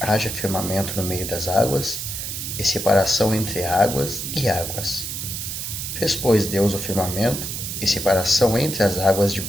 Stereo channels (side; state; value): right; noise; hiss, 5 dB below the sound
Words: firmamento no meio das águas, e separação entre águas e águas. Fez, pois, Deus o firmamento, e separação entre as águas